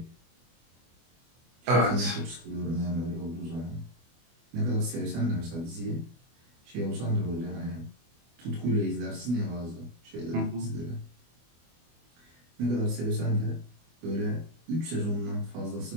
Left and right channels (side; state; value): left; late; 24 ms